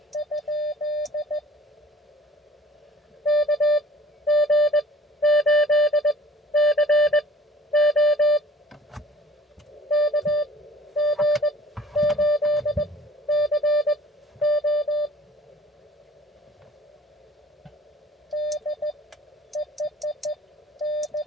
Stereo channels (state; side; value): normal; both; correlation 0.50